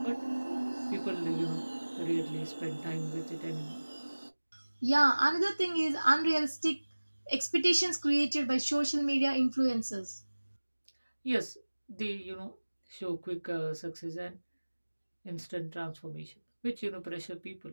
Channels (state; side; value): inverted; both; correlation -1.00